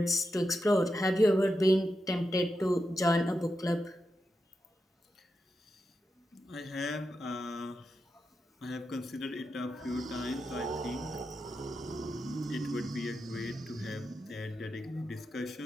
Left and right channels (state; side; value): normal; both; correlation 0.87